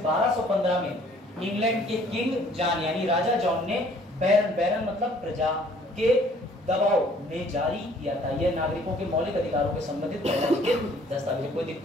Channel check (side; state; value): both; normal; correlation 0.58